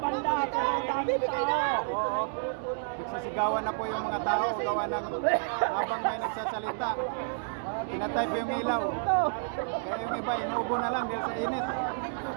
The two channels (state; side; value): silent; left; digital silence